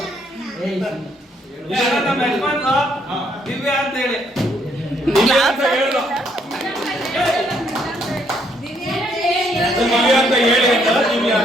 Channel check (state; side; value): normal; both; correlation 0.70